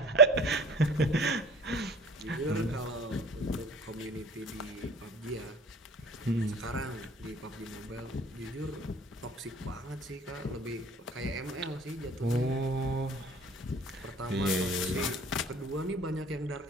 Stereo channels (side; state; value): both; normal; correlation 0.45